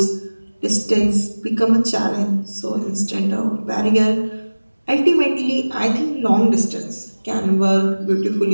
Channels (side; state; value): both; inverted; correlation -1.00